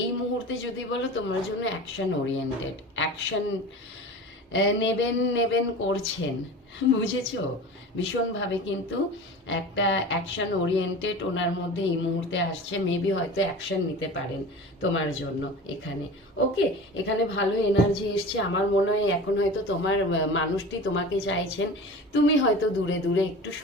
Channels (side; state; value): both; normal; correlation 0.35